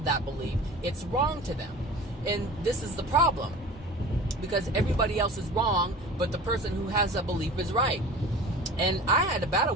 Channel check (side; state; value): both; normal; correlation 0.39